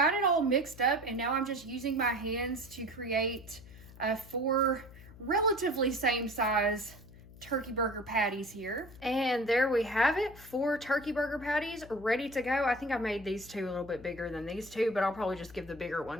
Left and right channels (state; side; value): noise; left; hum, 19 dB below the sound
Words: it all mixed up and now I'm just using my hands to create 4 relatively same size turkey burger patties here. And there we have it, 4 turkey burger patties ready to go. I think I made these 2 a little bit bigger than these 2, but I'll probably just give the bigger